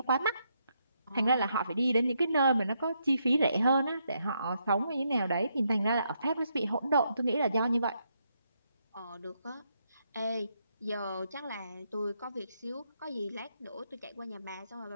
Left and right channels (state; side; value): inverted; both; correlation -0.78